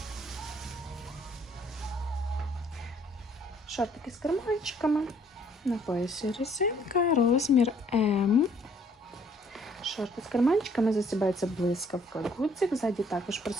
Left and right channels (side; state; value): both; normal; correlation 0.62